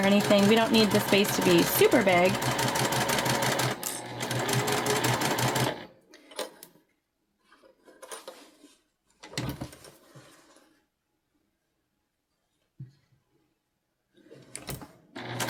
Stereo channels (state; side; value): identical; both; correlation 1.00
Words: anything, we don't need the space to be super big.